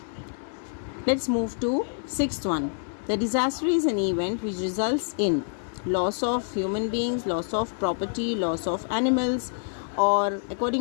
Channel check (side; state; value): right; silent; digital silence